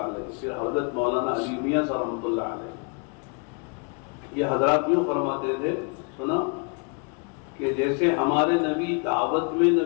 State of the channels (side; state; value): right; quieter; 34.8 dB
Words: علیہ، پھر حضرت مولانا علی میاں صاحب رحمۃ اللہ علیہ، یہ حضرات یوں فرماتے تھے، سنا کہ جیسے ہمارے نبی دعوت میں